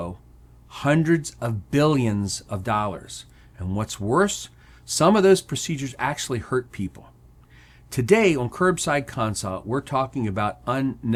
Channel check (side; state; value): both; identical; correlation 1.00